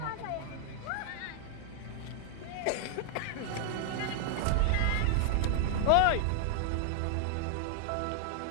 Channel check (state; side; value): different; both; correlation -0.01